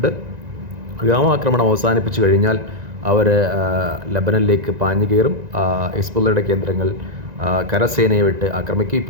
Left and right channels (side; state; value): left; late; 1.9 ms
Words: വ്യോമാക്രമണം അവസാനിപ്പിച്ചു കഴിഞ്ഞാൽ അവർ ലെബനനിലേക്ക് പാഞ്ഞു കയറും. ഹിസ്ബുള്ളയുടെ കേന്ദ്രങ്ങൾ കരസേനയെ വിട്ട് ആക്രമിക്കും.